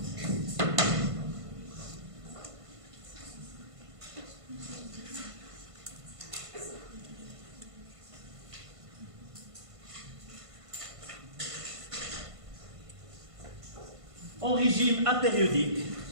En régime apériodique,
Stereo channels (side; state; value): left; late; 1.5 ms